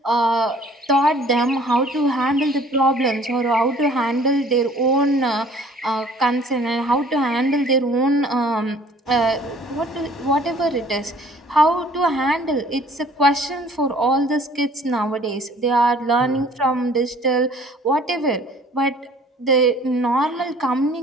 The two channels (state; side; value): normal; both; correlation 0.54